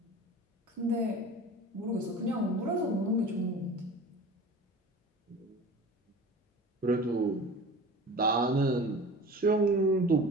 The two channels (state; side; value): normal; both; correlation 0.38